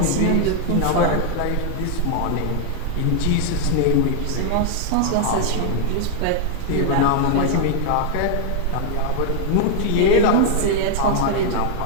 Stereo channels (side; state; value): both; different; correlation 0.00